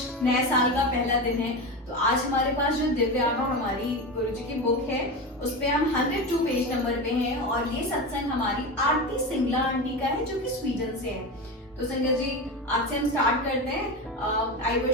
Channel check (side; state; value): both; normal; correlation 0.22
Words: नए साल का पहला दिन है, तो आज हमारे पास जो दिव्य आभा हमारी गुरु जी की बुक है उस पे हम 102 पेज नंबर पे हैं और ये सत्संग हमारी आरती सिंगला आंटी का है जो कि स्वीडन से है। तो संगत जी, आज से हम स्टार्ट करते हैं। आई